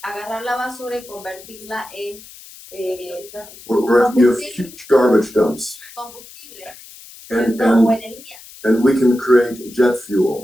agarrar la basura y convertirla en Where you have huge garbage dumps. combustible And o energía. and we can create jet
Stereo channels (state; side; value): noise; left; hiss, 19 dB below the sound